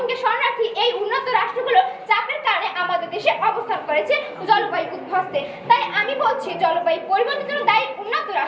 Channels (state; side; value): identical; both; correlation 1.00